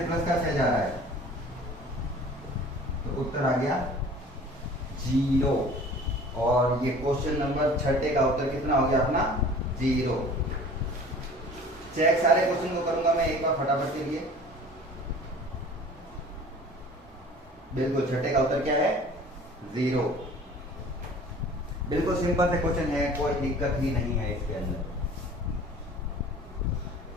प्लस का 6 जा रहा है, तो उत्तर आ गया 0। और ये क्वेश्चन नंबर 6 का उत्तर कितना हो गया अपना 0। चेक सारे क्वेश्चन को करूंगा मैं एक बार फटाफट के लिए। बिल्कुल 6 का उत्तर क्या है 0। बिल्कुल सिंपल से क्वेश्चन है, कोई दिक्कत ही नहीं है इसके अंदर।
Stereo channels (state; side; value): normal; both; correlation 0.46